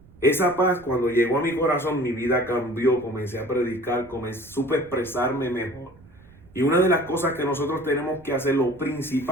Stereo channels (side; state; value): right; noise; rumble, 24 dB below the sound